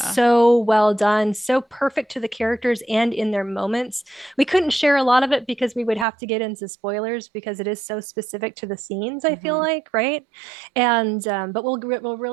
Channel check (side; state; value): left; drops out; at 6.1 s